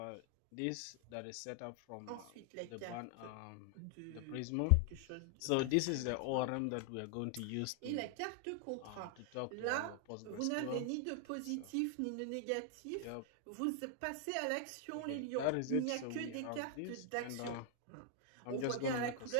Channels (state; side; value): different; both; correlation 0.00